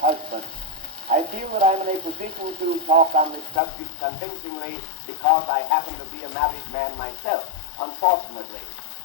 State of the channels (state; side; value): drops out; right; at 3.6 s